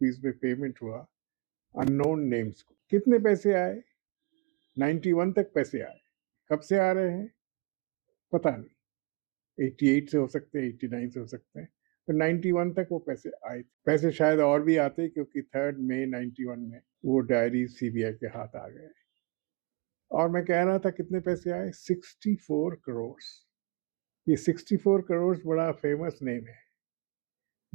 में पेमेंट हुआ अननोन नेम्स को। कितने पैसे आए? 91 तक पैसे आए। कब से आ रहे हैं पता नहीं, 88 से हो सकते हैं, 89 से हो सकते हैं, तो 91 तक वो पैसे आए थे। पैसे शायद और भी आते क्योंकि 3 मई 91 में वो डायरी सीबीआई के हाथ आ गए। और मैं कह रहा था कितने पैसे आए? 64 करोड़। ये 64 करोड़ बड़ा फेमस नेम है,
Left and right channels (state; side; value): quieter; left; 28.7 dB